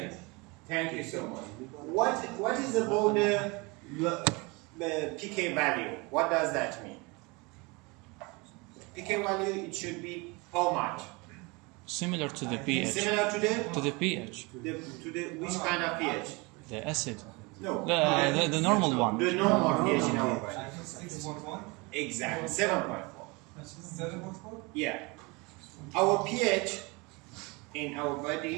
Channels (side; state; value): left; quieter; 27.0 dB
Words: Thank you so much. What is about the pK value? What does that mean? pK value, it should be how much? Similar to the pH. Similar to the pH. which kind of pH? The acid. No. The normal one. The normal pH in our body. 6.1. Exactly. 7.4. 7.4. Yeah. Our pH in our